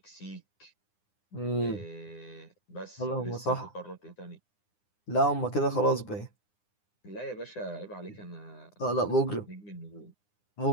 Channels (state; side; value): late; right; 9.8 ms